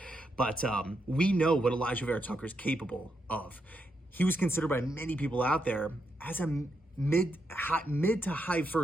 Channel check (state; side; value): normal; both; correlation 0.81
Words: But we know what Elijah Vera-Tucker is capable of. He was considered by many people out there as a mid to high